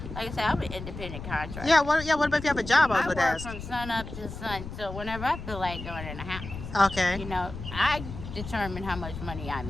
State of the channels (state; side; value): noise; left; rumble, 10 dB below the sound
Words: like I said, I'm an independent contractor. Yeah. What about if you have a job? I work from sun up to sun. So whenever I feel like going in the house, okay, I determine how much money I